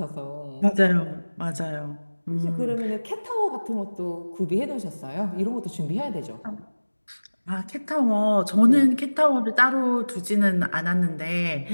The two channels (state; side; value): inverted; both; correlation -1.00